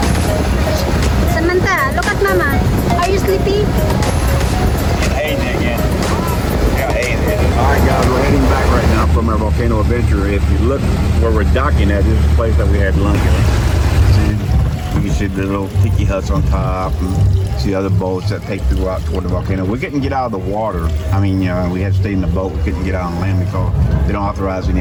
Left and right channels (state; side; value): identical; both; correlation 1.00